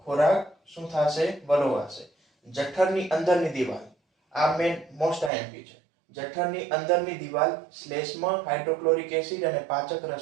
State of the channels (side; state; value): left; drops out; at 5.3 s